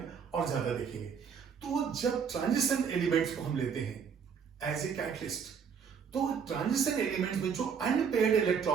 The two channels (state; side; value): quieter; left; 6.8 dB